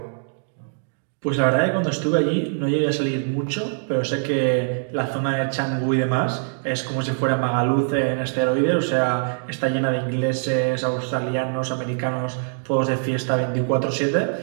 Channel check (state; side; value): silent; left; digital silence